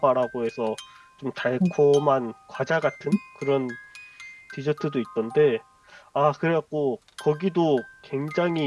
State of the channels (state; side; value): identical; both; correlation 1.00